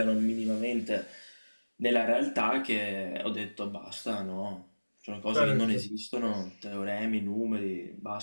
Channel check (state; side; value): inverted; both; correlation -1.00